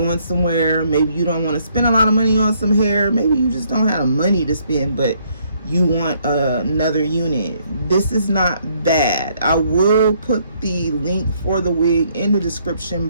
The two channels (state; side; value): inverted; both; correlation -0.68